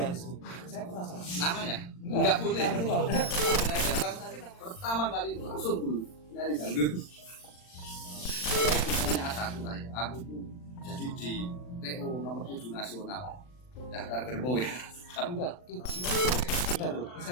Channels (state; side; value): late; right; 39 ms